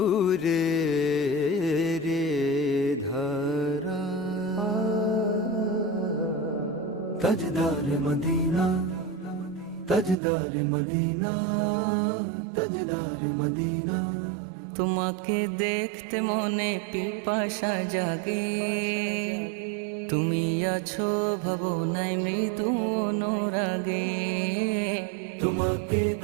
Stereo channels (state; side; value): drops out; left; at 10.2 s